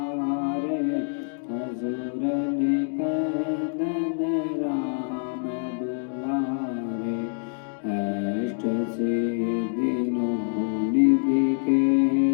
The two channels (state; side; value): silent; right; 61 dB below the other